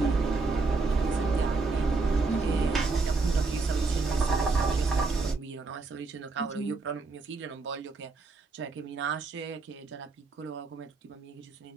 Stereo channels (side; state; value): left; quieter; 3.9 dB